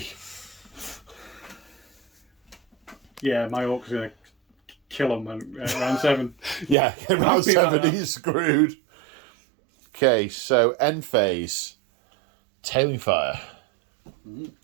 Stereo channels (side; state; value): left; drops out; at 6.8 s